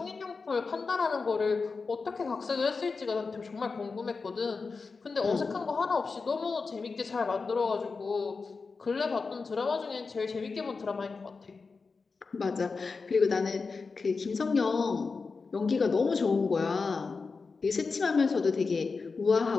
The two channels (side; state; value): right; quieter; 4.5 dB